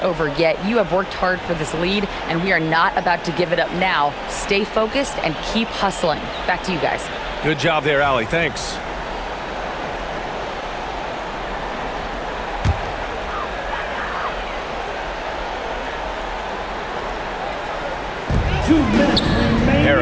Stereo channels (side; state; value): both; identical; correlation 1.00